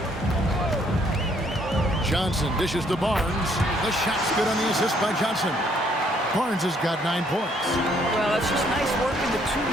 Johnson dishes to Barnes. The shot's good on the assist by Johnson. Barnes has got 9 points. Well, it's just nice work in the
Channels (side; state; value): both; normal; correlation 0.67